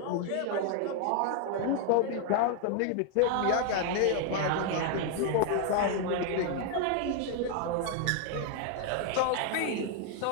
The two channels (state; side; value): different; both; correlation 0.00